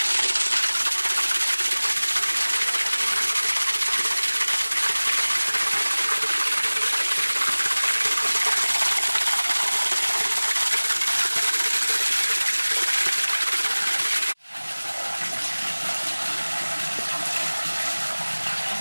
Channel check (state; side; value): inverted; both; correlation -1.00